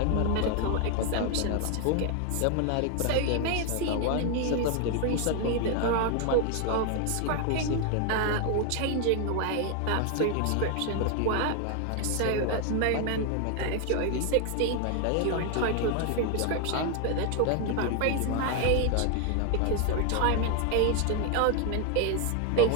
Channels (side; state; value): both; different; correlation 0.00